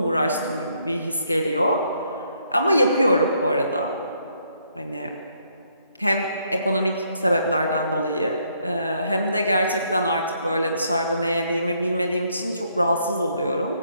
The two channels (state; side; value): inverted; both; correlation -0.71